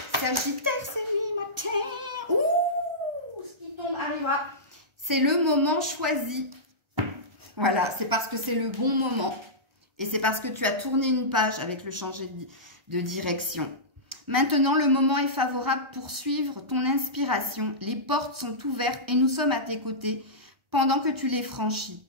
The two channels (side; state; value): left; late; 1.3 ms